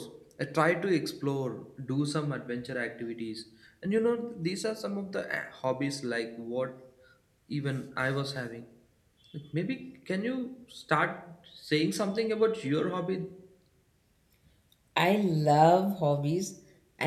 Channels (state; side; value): identical; both; correlation 1.00